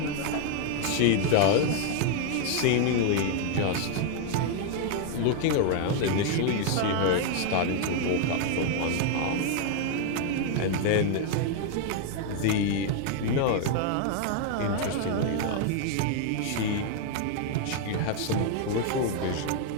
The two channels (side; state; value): both; different; correlation 0.00